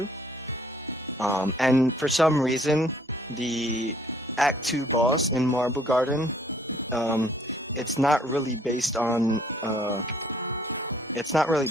And for some reason, the Act 2 boss in Marble Garden, it's not really based on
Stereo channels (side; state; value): both; normal; correlation 0.61